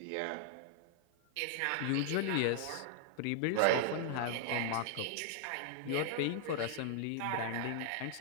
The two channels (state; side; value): different; both; correlation -0.01